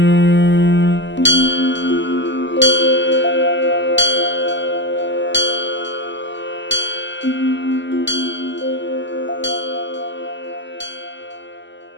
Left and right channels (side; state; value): right; late; 0.53 ms